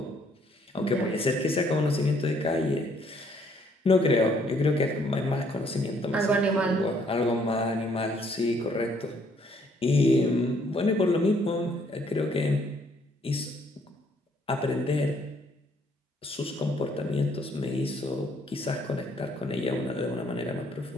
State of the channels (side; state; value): both; normal; correlation 0.66